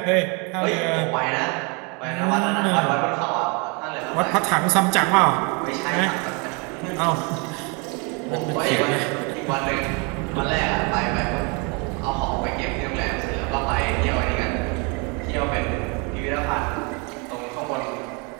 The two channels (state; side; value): quieter; left; 32.0 dB